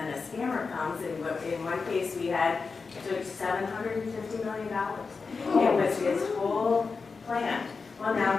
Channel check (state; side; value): quieter; right; 4.7 dB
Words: a scammer comes, and in one case we had took $750 million. It was his whole plan. Well,